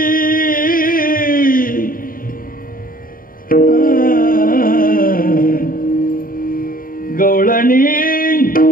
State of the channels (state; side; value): late; right; 0.41 ms